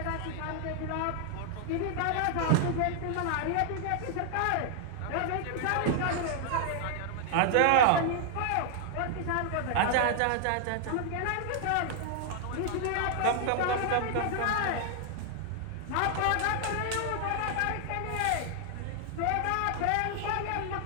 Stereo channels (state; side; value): different; both; correlation 0.00